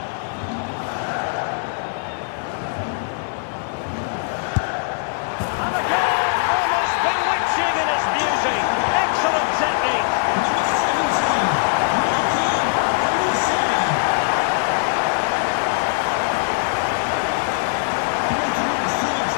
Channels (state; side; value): silent; right; digital silence